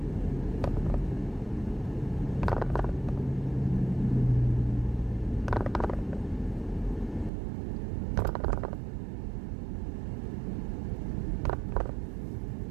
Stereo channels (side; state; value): left; drops out; at 7.3 s